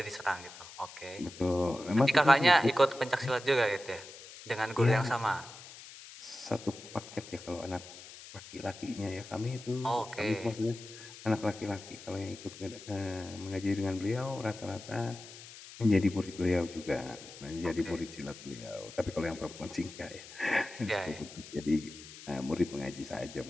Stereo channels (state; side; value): noise; left; hiss, 16 dB below the sound